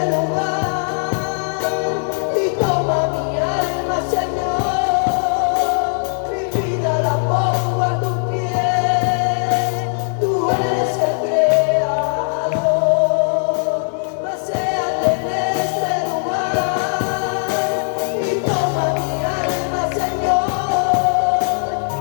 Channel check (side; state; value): right; silent; 65 dB below the other